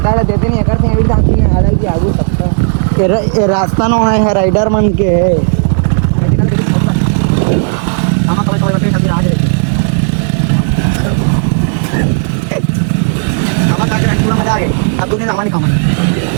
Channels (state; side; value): silent; left; digital silence